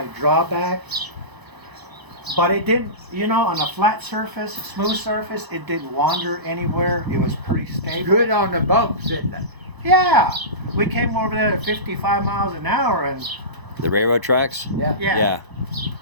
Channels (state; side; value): late; left; 1.0 ms